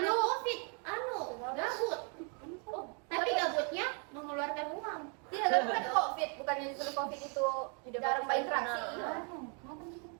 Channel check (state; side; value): quieter; left; 38.1 dB